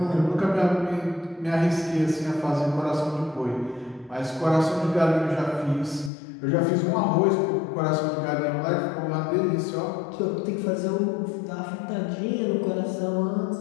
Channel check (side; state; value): right; drops out; at 6.1 s